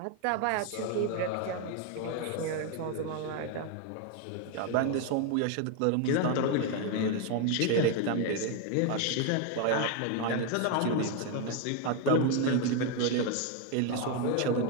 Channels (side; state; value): both; different; correlation 0.01